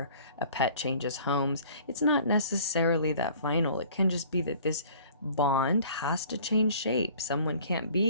a pet changes homes. It's not necessarily that final. It can just be that this bond has to change shape. Someone can't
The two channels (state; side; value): inverted; both; correlation -0.50